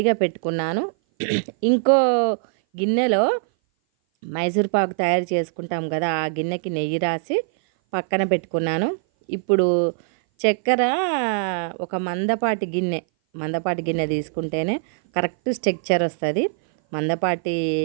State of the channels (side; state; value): left; silent; 58 dB below the other